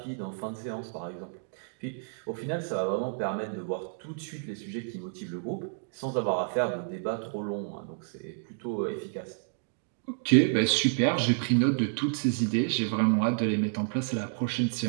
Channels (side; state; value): left; silent; digital silence